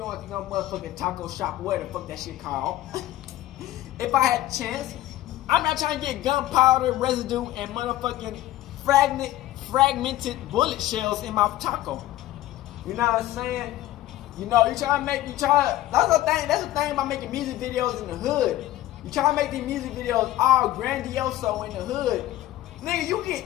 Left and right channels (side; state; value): right; quieter; 14.9 dB